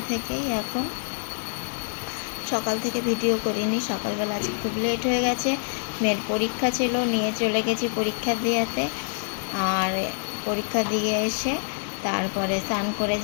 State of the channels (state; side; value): silent; right; 61 dB below the other